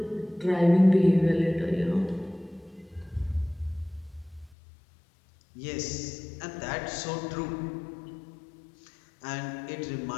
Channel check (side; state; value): right; drops out; at 4.5 s